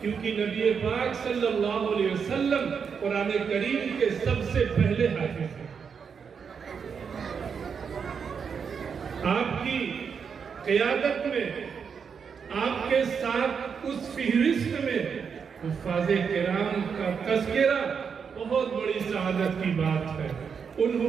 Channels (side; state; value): left; quieter; 6.4 dB